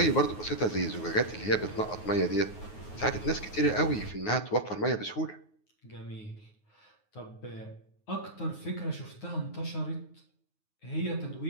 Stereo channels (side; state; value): right; late; 9.5 ms